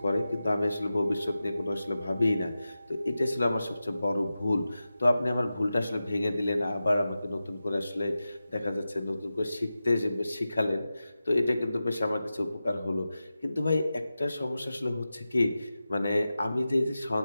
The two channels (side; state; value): both; inverted; correlation -0.93